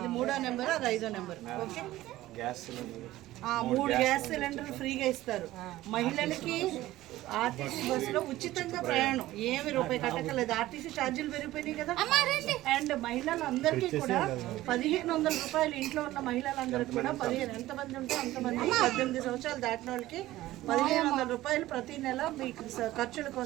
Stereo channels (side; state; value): left; quieter; 16.1 dB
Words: 3వ నెంబర్, అది 5వ నెంబర్. ఓకే, 3 గ్యాస్ సిలిండర్లు ఫ్రీగా ఇస్తారు. మహిళలకి ఆర్టీసీ బస్సులో ఉచితంగా ప్రయాణం, ఏమి రూపాయి కట్టకలేదు. ఆర్టీసీ ఛార్జీలు పెరిగిపోయినాయి కదా. అండ్ మహిళలందరికీ కూడా 1500 రూపాయలు, ఇంట్లో ఉన్న మహిళలందరికీ కూడా 15, ఎంతమంది ఉంటే అంతమంది, 18 సంవత్సరాలు దాటిన వాళ్ళకి 1500 రూపాయలు ప్రతి నెల మీకు ఖర్చుల